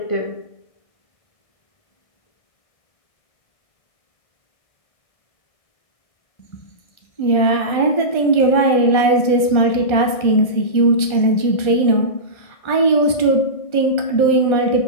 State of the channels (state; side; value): late; right; 1.4 ms